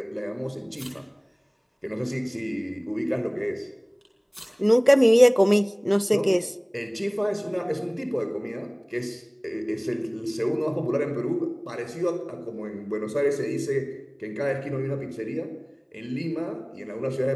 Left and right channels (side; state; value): both; identical; correlation 1.00